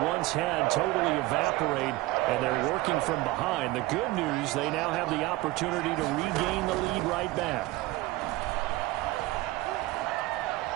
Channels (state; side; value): quieter; left; 19.2 dB